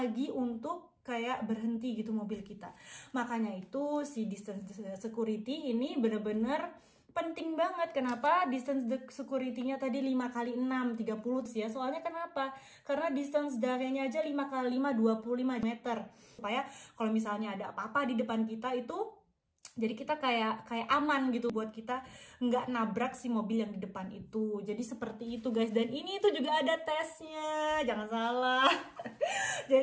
untuk kayak berhenti gitu mobil kita. Makanya itu si distance security ini bener-bener penting banget. Kenapa distance security-nya tadi 5 kali 6 30 ya? Soalnya kenapa? Karena distance d'arrêt-nya aja 5 kali 5 25 meter. Supaya kalau misalnya ada apa-apa di depan kita itu, jadi kita kayak aman gitu buat kita nggak nabrak si mobil yang di depan itu. Jadi seperti itu guys. Dan ini itu juga ada tesnya, jangan salah.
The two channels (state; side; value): identical; both; correlation 1.00